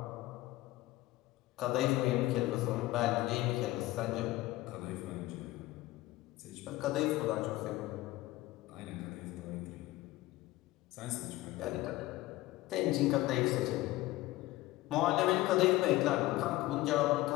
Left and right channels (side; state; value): right; quieter; 17.6 dB